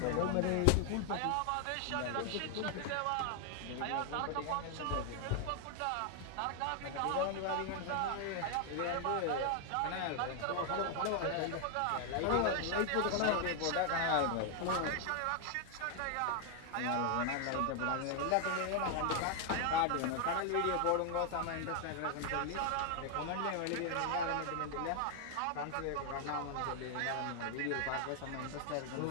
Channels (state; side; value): different; both; correlation 0.00